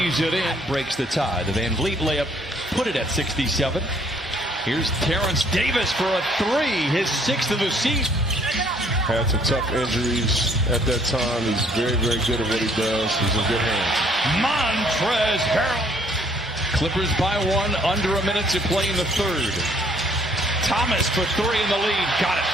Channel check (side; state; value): both; normal; correlation 0.63